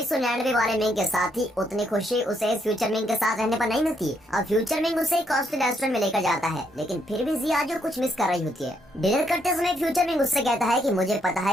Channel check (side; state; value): both; normal; correlation 0.74